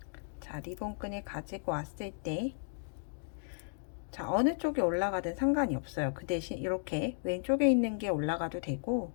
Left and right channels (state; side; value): silent; right; digital silence